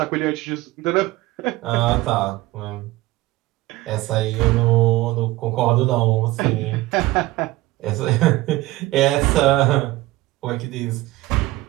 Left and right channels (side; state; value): left; quieter; 18.4 dB